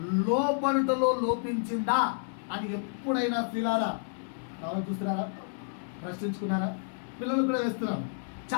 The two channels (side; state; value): right; silent; digital silence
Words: లోపడుటలో లోపించిందా అని ఎప్పుడైనా స్త్రీలారా చూస్తున్నారా? ప్రశ్నించుకున్నారా? పిల్లలు కూడా వేస్తున్నాం